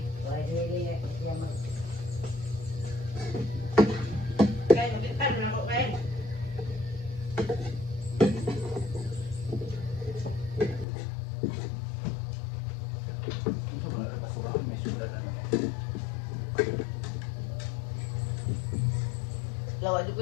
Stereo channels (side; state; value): right; drops out; at 10.9 s